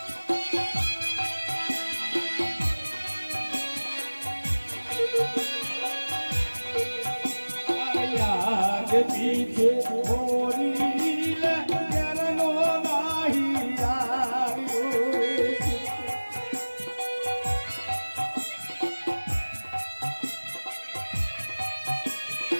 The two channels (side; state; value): both; inverted; correlation -1.00